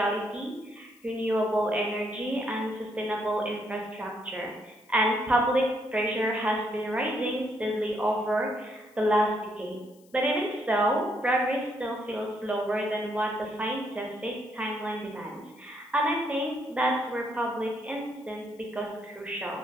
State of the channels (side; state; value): left; noise; hiss, 30 dB below the sound